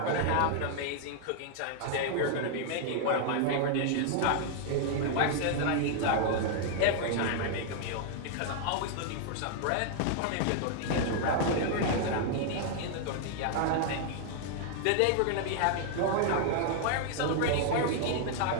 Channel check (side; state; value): both; different; correlation 0.00